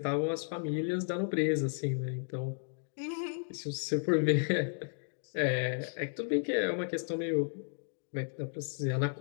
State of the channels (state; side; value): silent; right; digital silence